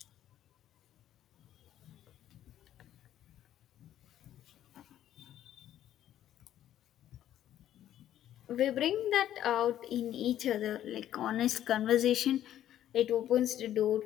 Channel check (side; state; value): right; quieter; 11.7 dB